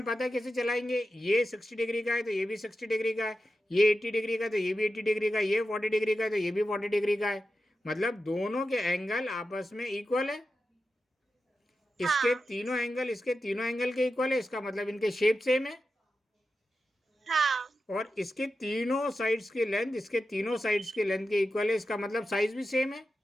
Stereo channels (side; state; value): both; normal; correlation 0.91